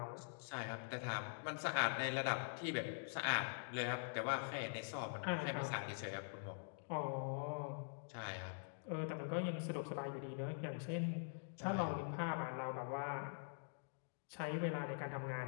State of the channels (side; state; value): right; silent; digital silence